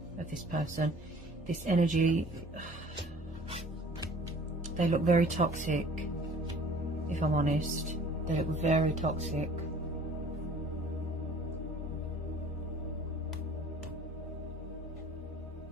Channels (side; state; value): both; normal; correlation 0.49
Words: of this person. This energy, they look very toxic, if I'm honest. They look very toxic.